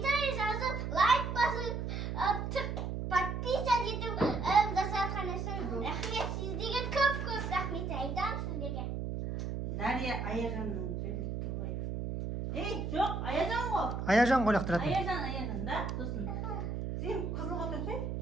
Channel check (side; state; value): right; noise; hum, 3 dB below the sound